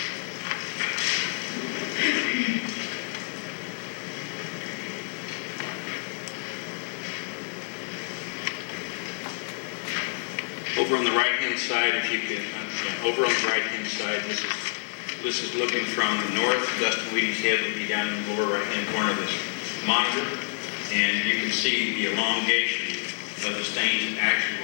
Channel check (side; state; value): right; silent; digital silence